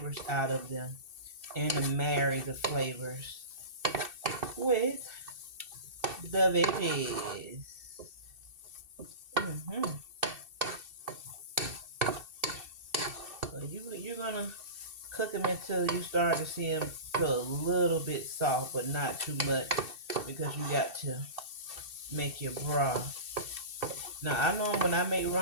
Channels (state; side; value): late; left; 2.7 ms